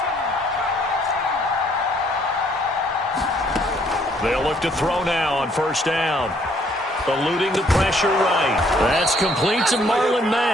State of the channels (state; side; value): normal; both; correlation 0.65